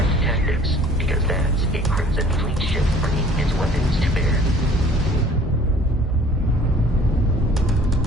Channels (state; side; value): normal; both; correlation 0.52